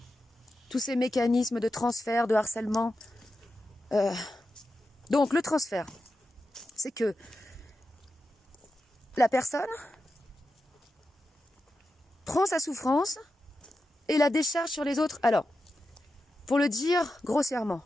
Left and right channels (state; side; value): normal; both; correlation 0.90